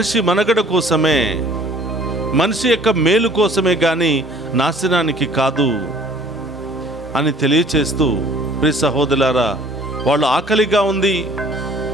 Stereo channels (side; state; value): both; normal; correlation 0.53